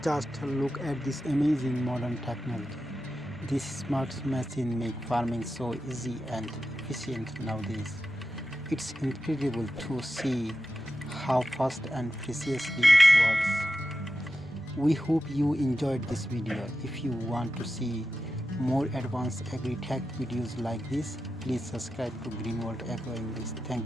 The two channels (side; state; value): both; normal; correlation 0.91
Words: Just look at this amazing modern technology. This smart machine make farming so easy and efficient nowadays. It's incredible to see how fast and precisely it works. We hope you enjoyed this video. If you want to see more advanced agri-tech videos like this, please subscribe to Green World Agro English.